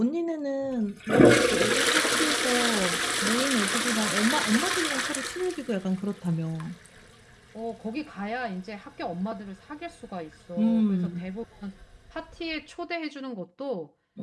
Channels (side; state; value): both; identical; correlation 1.00